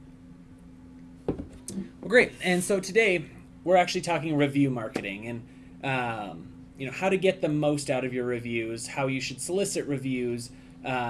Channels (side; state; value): both; identical; correlation 1.00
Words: Well, great. And so today we're actually talking review marketing and how to get the most out of your reviews, how you should solicit reviews,